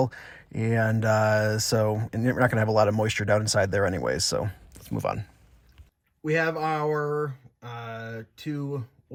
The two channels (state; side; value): identical; both; correlation 1.00